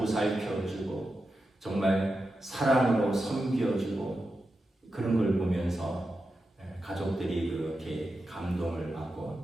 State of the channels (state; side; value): normal; both; correlation 0.90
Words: 정말 사랑으로 섬겨주고, 그런 걸 보면서 가족들이 그렇게 감동을